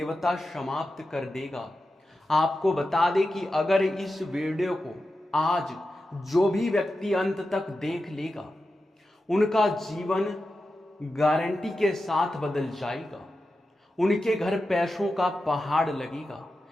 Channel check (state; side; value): normal; both; correlation 0.91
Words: समाप्त कर देगा। आपको बता दें कि अगर इस वीडियो को आज जो भी व्यक्ति अंत तक देख लेगा, उनका जीवन गारंटी के साथ बदल जाएगा। उनके घर पैसों का पहाड़ लगेगा,